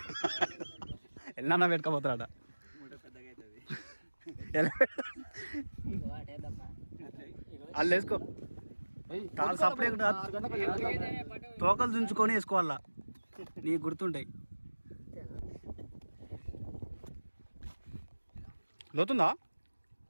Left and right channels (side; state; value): both; inverted; correlation -1.00